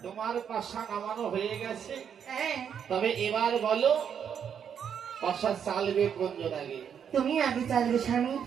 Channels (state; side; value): quieter; left; 8.0 dB